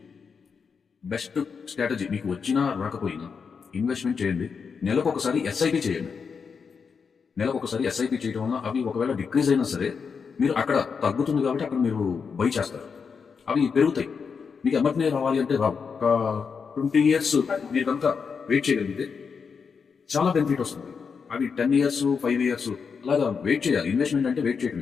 బెస్ట్ స్ట్రాటజీ మీకు వచ్చినా రాకపోయినా ఇన్వెస్ట్మెంట్ చేయండి. నెలకు ఒకసారి ఎస్ఐపి చేయండి. నెలకు ఒకసారి ఎస్ఐపి చేయడం వల్ల అవి ఒకవేళ డిక్రీజ్ అయినా సరే మీరు అక్కడ తగ్గుతుంది కాబట్టి అక్కడ మీరు బై చేస్తారు, అవి పెరుగుతాయి. మీకు ఎమ్మటనే రావాలి అంటే రావు. ఒక 20 years మీరు కనుక వెయిట్ చేయగలిగితే చాలా బెనిఫిట్ వస్తుంది. అవి 10 years 5 years అలాగా వెయిట్ చేయాలి. ఇన్వెస్ట్మెంట్ అంటే వెయిట్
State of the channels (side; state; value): right; quieter; 5.8 dB